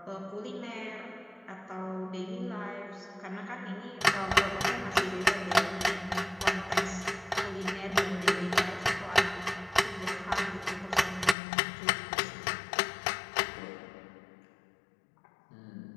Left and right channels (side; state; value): right; drops out; at 11.4 s